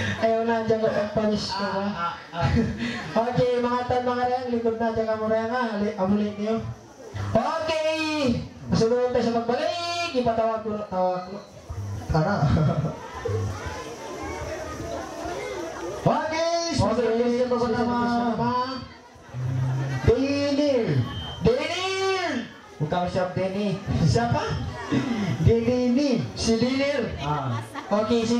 Ayaw na dyan ko pagpanis ko ba? Okay, mga tan mga reyang, likod na dyan ka mo reyang ha. Amulit niyo. Okay! Masunod tayo sa magbalik. Ipatawag ko. Tara. Okay! Okay, ito ko naman. Denil! Denil! Bukan siap Denny. Siapa? Denny. Si Denil. Okay, si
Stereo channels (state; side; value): identical; both; correlation 1.00